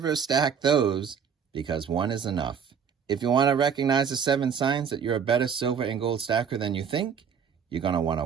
stack those because 1 is enough. If you want to recognize the 7 signs that you're a better silver and gold stacker than you think, you're going to want to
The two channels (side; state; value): left; quieter; 7.2 dB